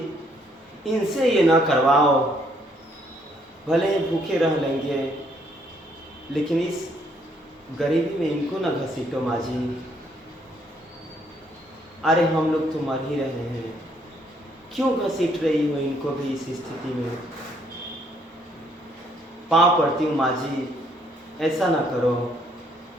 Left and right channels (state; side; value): normal; both; correlation 0.68